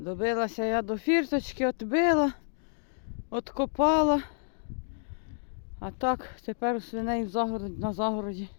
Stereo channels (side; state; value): right; silent; digital silence